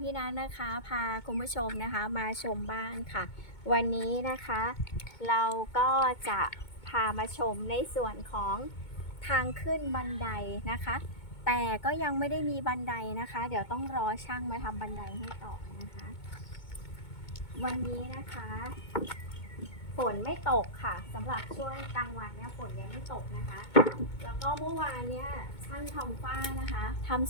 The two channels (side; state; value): right; late; 2.2 ms